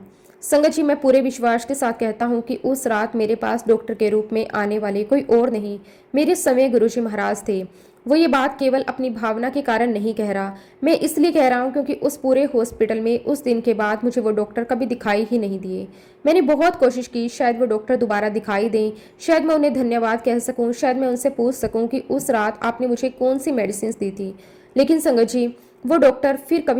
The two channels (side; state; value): both; identical; correlation 1.00